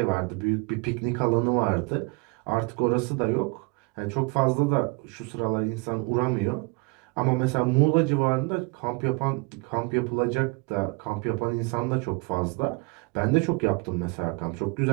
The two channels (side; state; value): left; quieter; 29.5 dB